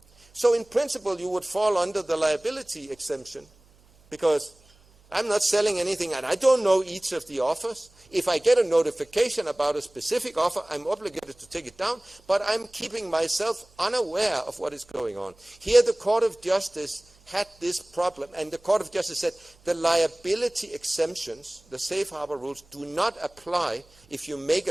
So in principle, you would fall under the liability exemption because I'm not selling anything and I don't know each of the offers. If I get a notification about a specific offer, I'm obligated to take it down, but I'm keeping myself unaware of what is going on. Here the Court of Justice had this problem, and the Court of Justice said the liability exemptions, the safe harbor rules, do not apply if you make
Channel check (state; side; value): noise; right; hum, 29 dB below the sound